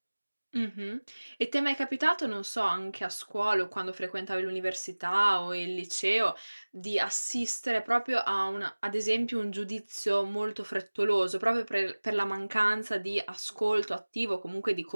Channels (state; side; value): inverted; both; correlation -1.00